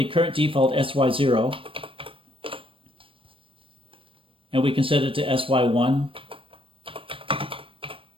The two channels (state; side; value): late; left; 0.25 ms